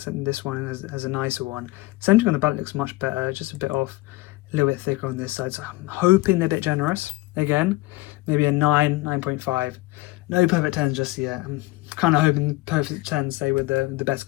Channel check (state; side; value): quieter; right; 20.2 dB